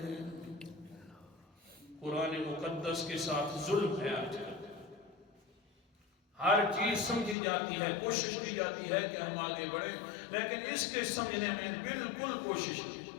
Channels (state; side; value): drops out; right; at 7.4 s